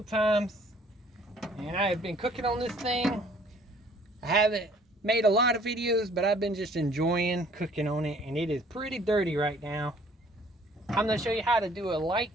times and I have been cooking on this thing. I haven't made a lot of videos, but I've been just enjoying cooking on it, and it is pretty dirty right now. I'm going to show you how to do a light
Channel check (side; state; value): both; normal; correlation 0.58